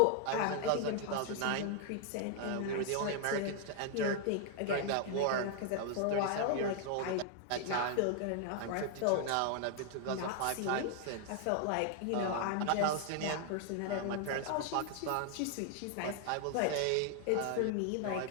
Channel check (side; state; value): both; different; correlation 0.00